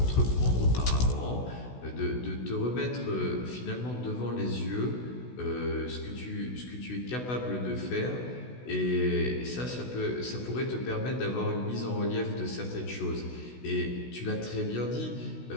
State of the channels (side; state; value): right; late; 16 ms